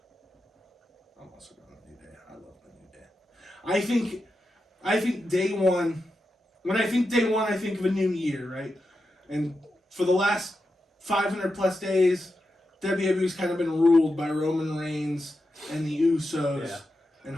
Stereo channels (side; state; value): both; normal; correlation 0.89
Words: I'm also going The New Day. I love The New Day. I think Day One. When I think Day One, I think of a new year, right? And for the last 500 plus days, WWE's kind of been ruled by Roman Reigns and the Usos and